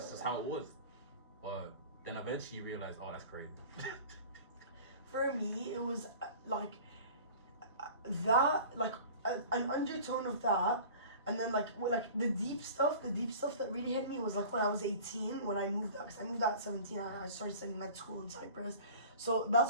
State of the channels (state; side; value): inverted; both; correlation -0.42